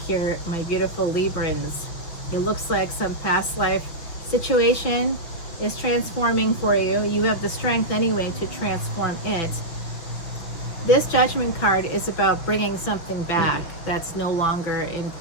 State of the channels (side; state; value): right; late; 6.0 ms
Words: here, my beautiful Librans. It looks like some past life situation is transforming for you. You have the strength anyway to transform it. This Judgment card is about bringing something back that's no longer in